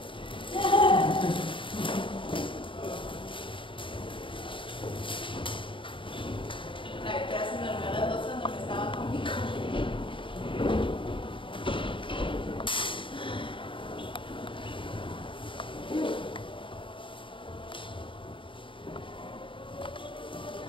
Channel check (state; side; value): late; right; 0.25 ms